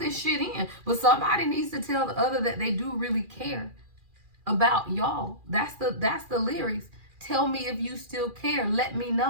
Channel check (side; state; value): left; late; 2.4 ms